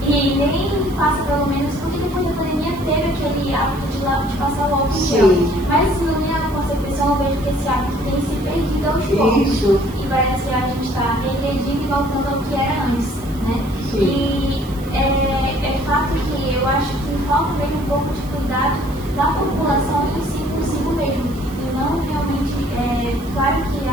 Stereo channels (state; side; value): noise; right; hiss, 21 dB below the sound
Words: E nem passa pelo menos, porque depois da pandemia teve aquele hábito de passar o álcool em gel. Mas na minha concepção eu vejo que esse hábito tem se perdido aos poucos. Isso. E parece que a gente está regredindo e voltando ao que era antes, né? Sim. E é fato que eu acho que falta mesmo um pouco de cuidado da população em si consigo mesmo. E não realmente, claro que